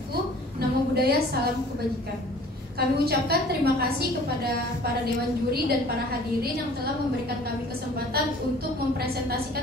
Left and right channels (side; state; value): both; normal; correlation 0.49